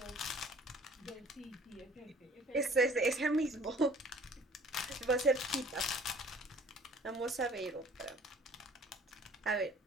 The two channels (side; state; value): both; normal; correlation 0.53